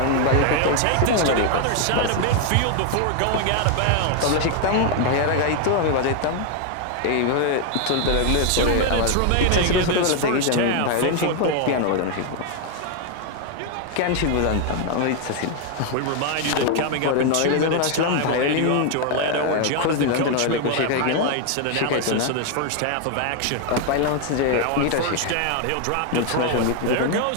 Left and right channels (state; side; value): different; both; correlation 0.01